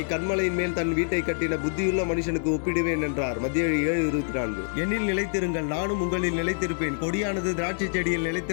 கன்மலையின் மேல் தன் வீட்டை கட்டின புத்தியுள்ள மனுஷனுக்கு ஒப்பிடுவேன் என்றார். மத்திய 7:24. என்னில் நிலைத்திருங்கள், நானும் உங்களில் நிலைத்திருப்பேன். கொடியானது திராட்சை செடியில்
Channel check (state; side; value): silent; right; digital silence